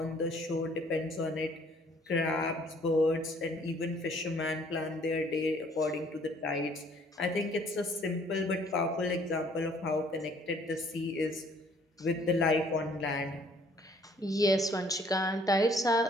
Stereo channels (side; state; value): both; normal; correlation 0.60